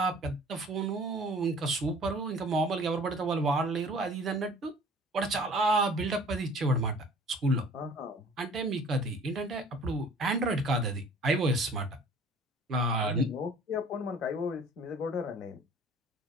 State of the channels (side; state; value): both; normal; correlation 0.49